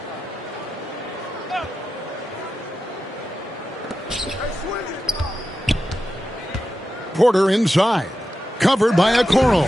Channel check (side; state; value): both; normal; correlation 0.90